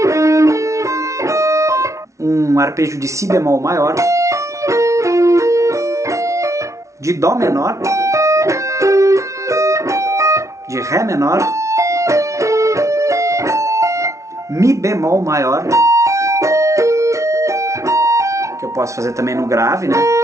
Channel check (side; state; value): left; late; 0.14 ms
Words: um arpejo de Si bemol maior, de Dó menor, de Ré menor, Mi bemol maior, que eu posso fazer também no grave, né?